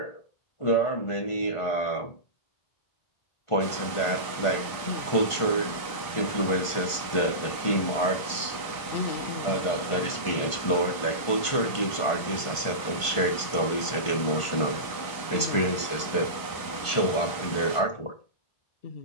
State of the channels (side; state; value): right; late; 1.5 ms